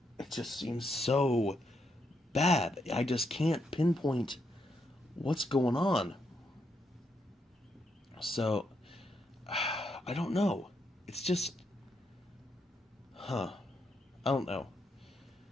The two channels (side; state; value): both; normal; correlation 0.79